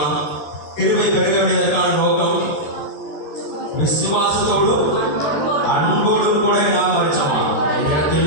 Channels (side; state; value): right; late; 13 ms